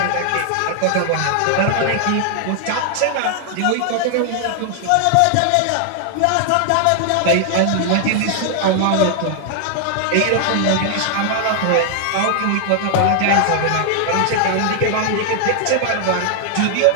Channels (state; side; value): different; both; correlation 0.00